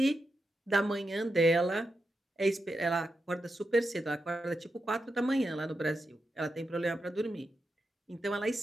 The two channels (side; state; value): both; normal; correlation 0.87